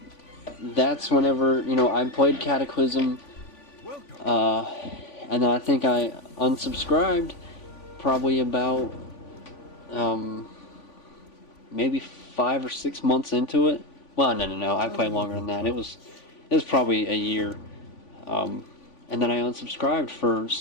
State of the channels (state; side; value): late; right; 3.5 ms